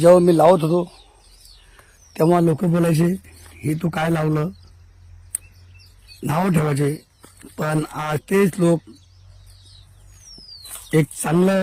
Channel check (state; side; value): identical; both; correlation 1.00